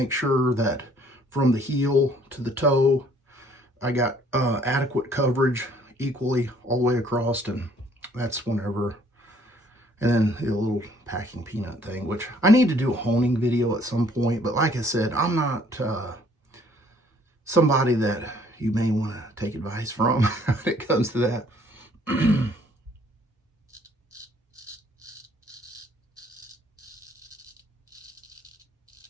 sure that from the heel to the toe, I got adequate coverage equally all the way across. And that's whenever, and then the little packing peanut thing, which I need to do a honing video at some point. But like I said, I'm not somebody that you may want to take advice from when it comes to that.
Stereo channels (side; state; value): both; normal; correlation 0.61